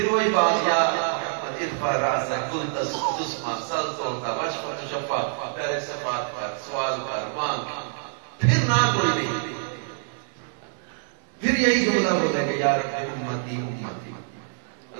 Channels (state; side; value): silent; left; 61 dB below the other